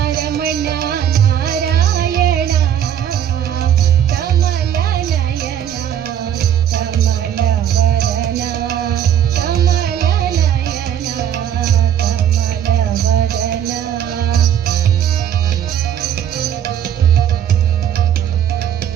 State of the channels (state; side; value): quieter; left; 9.8 dB